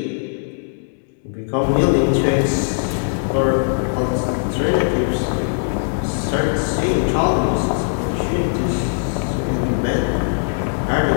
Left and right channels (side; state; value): right; silent; digital silence